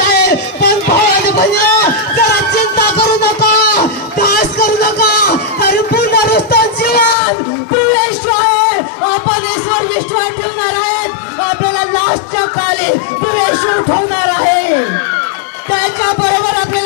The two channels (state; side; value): drops out; right; at 7.2 s